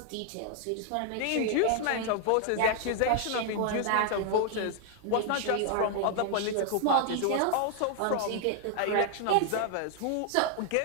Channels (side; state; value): both; different; correlation 0.00